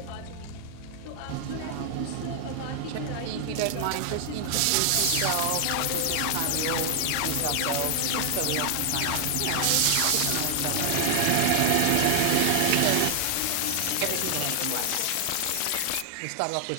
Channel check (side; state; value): both; different; correlation 0.00